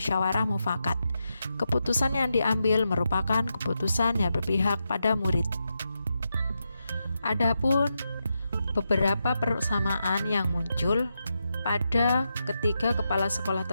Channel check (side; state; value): both; inverted; correlation -0.86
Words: mufakat. Keputusan yang diambil merupakan keputusan yang berpihak pada murid. Adapun beberapa persamaan yang muncul pada ketiga kepala sekolah